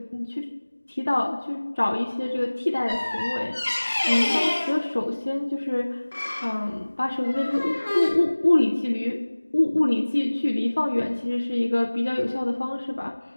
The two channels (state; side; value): inverted; both; correlation -1.00